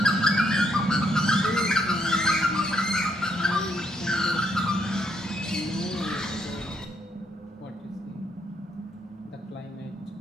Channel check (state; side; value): normal; both; correlation 0.74